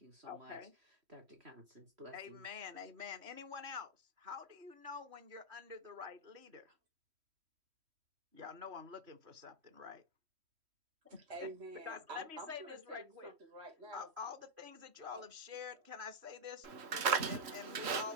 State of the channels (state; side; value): late; left; 3.1 ms